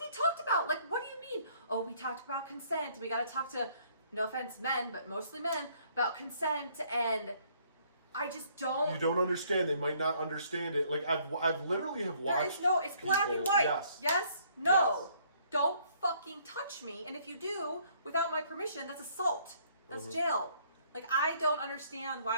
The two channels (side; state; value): both; inverted; correlation -0.63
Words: talked about. What do you mean? Oh, we talked about consent. We got to talk to, no offense, men, but mostly men, about consent. And I just don't. You don't understand. They might not understand it. I've literally have watched. It's black and white. Yes. Yes? No. Yes. Don't fucking touch me. And if you do, without my permission, that's assault. That's jail. I don't understand.